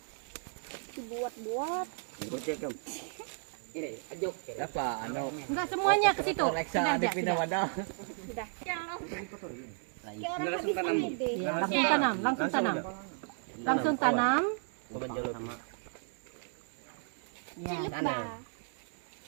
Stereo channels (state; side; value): silent; left; 55 dB below the other